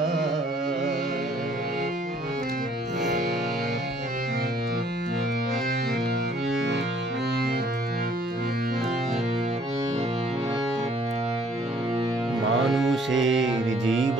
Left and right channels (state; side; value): normal; both; correlation 0.61